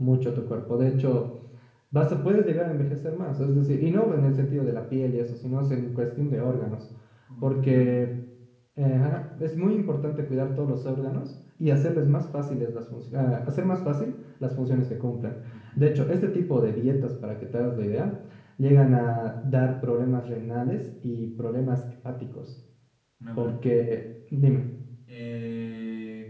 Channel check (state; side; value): identical; both; correlation 1.00